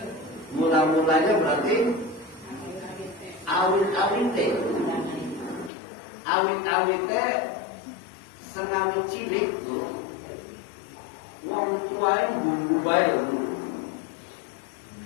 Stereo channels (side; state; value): right; drops out; at 5.7 s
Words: Mula-mulanya berarti awit-awit. Awit-awit sengawi cilik tuh. Wong tuanya bumbu baik.